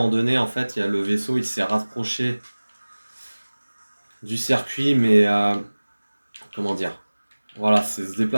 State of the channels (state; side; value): inverted; both; correlation -1.00